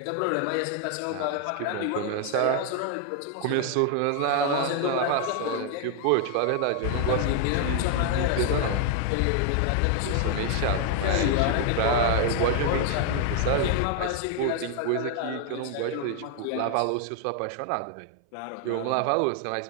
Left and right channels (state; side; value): different; both; correlation 0.00